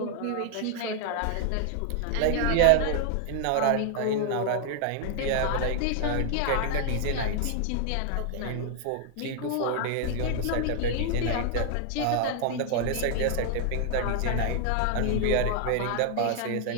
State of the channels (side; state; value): both; different; correlation 0.00